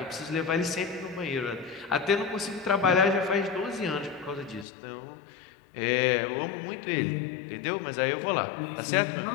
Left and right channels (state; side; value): drops out; right; at 4.7 s